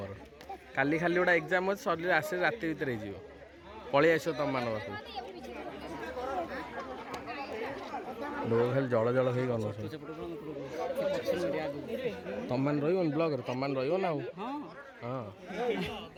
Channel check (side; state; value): both; identical; correlation 1.00